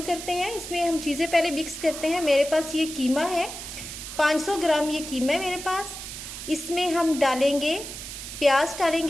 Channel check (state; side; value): noise; right; hiss, 9 dB below the sound